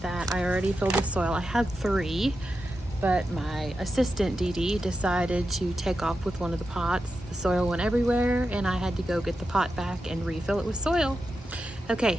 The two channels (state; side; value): normal; both; correlation 0.89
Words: that I already filled with soil. I had 3, but my assistant Dee Dee decided to take off with one of the pots. The soil went everywhere and I had to go get the pot back and refill it with soil. Okay,